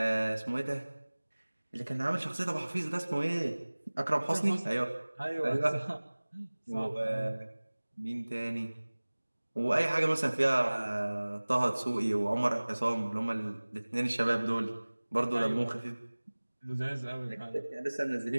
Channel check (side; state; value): both; inverted; correlation -1.00